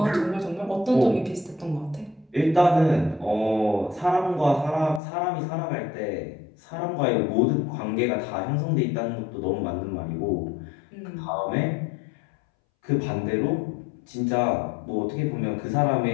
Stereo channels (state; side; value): drops out; right; at 5.0 s